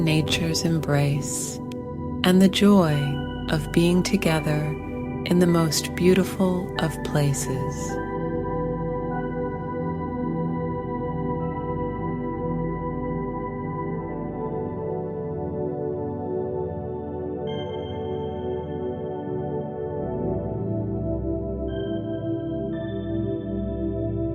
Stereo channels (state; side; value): identical; both; correlation 1.00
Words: nature's embrace, and the joy of being together in the most beautiful of places.